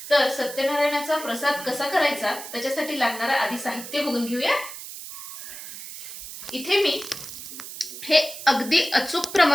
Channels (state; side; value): noise; right; hiss, 11 dB below the sound